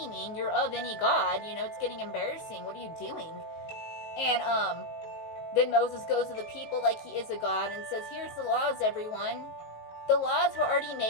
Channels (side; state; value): right; late; 19 ms